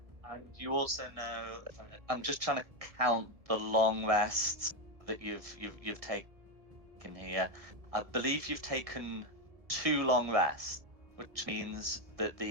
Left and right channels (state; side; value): late; left; 1.7 ms